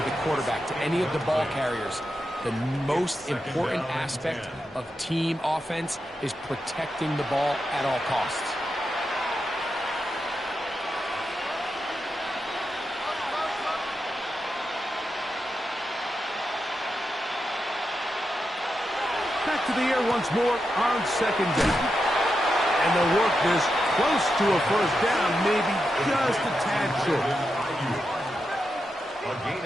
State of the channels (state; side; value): normal; both; correlation 0.87